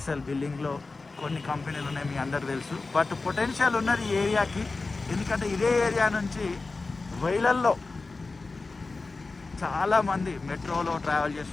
బిల్డింగ్లో కొన్ని కంపెనీలు ఉన్నాయి, మీ అందరికి తెలుసు. బట్ పొటెన్షియల్ ఉన్నది ఈ ఏరియాకి, ఎందుకంటే ఇదే ఏరియా నుంచి వేలల్లో చాలామంది మెట్రోలో ట్రావెల్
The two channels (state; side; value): quieter; right; 3.7 dB